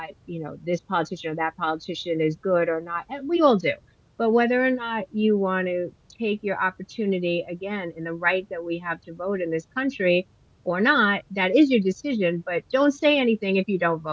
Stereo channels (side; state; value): both; identical; correlation 1.00